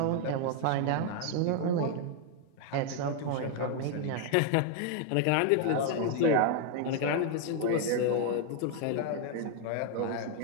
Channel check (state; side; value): different; both; correlation 0.00